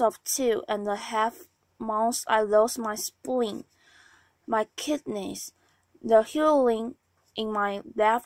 2.5 months, I lost my spleen, my kidneys, the hearing in my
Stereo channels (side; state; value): both; identical; correlation 1.00